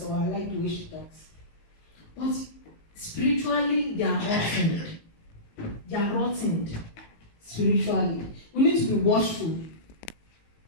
or I like the way she talks. But spiritually, they are rotted. They are rotted spiritually. We need to be watchful.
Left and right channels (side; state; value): right; late; 18 ms